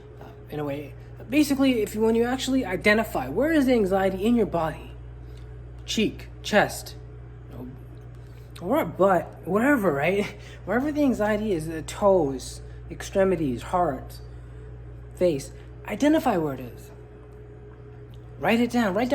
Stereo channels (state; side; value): identical; both; correlation 1.00